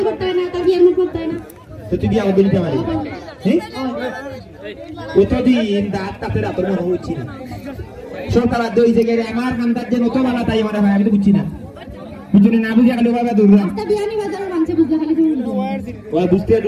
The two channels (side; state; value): both; identical; correlation 1.00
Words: করতে হয় না তার বিয়ার মুখ করতে হয় না তো তুই বিয়া বলি তে মারি হ্যাঁ ও তো দিন দাঁত তাতে রাতের মনে হচ্ছে না সরকার দই জায়গায় আমার কান্দার যে নতুন বালা তাই আমার ভাই আমি তো বুঝছি না বুঝুনি না বুঝে গেল বাবা দূর রাস্তা বিয়ানীবাজারের মানছে বুঝতে খালি ও বুঝতে